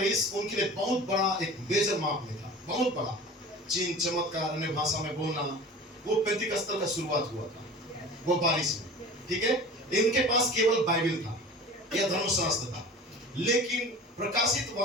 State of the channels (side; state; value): both; normal; correlation 0.39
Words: उनके लिए बहुत बड़ा एक मेजर माप में था, बहुत बड़ा। चिन्ह, चमत्कार, अन्य भाषा में बोलना, वो पेंतिकस्तर का शुरुआत हुआ था वो बारिश में। ठीक है, इनके पास केवल बाइबल था या धर्मशास्त्र था, लेकिन प्रकाशित